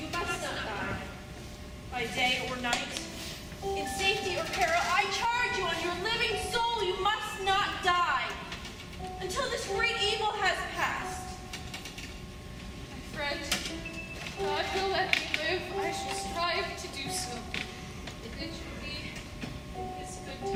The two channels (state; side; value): identical; both; correlation 1.00